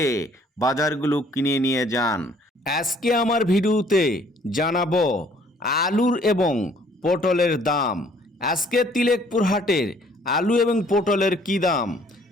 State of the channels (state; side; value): normal; both; correlation 0.59